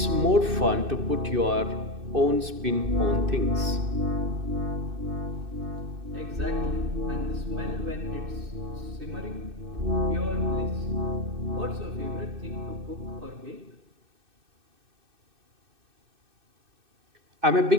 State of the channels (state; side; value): late; left; 2.6 ms